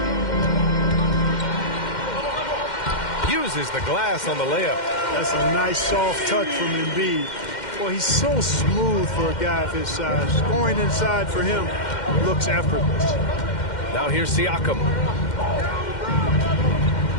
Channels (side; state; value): right; late; 2.1 ms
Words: Uses the glass on the layup. That's a nice soft touch from Embiid. Well, he's so smooth for a guy of his size. Scoring inside for him looks effortless. Now here's Siakam.